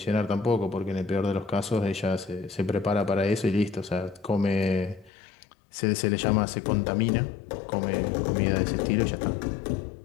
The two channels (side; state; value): right; drops out; at 5.1 s